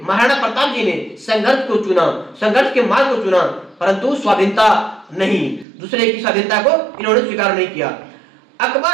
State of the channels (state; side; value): drops out; left; at 5.7 s